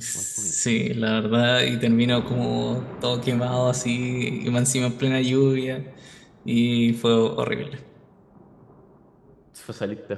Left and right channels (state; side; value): identical; both; correlation 1.00